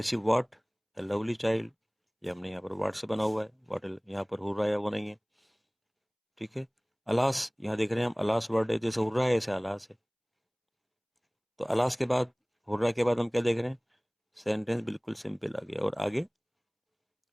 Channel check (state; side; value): identical; both; correlation 1.00